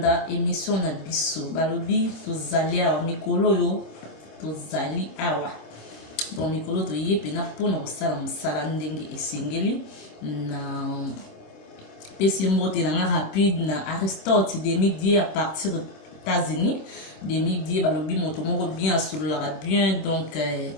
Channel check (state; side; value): late; right; 26 ms